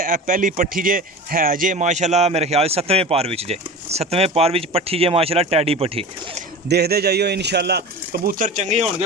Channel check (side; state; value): both; normal; correlation 0.33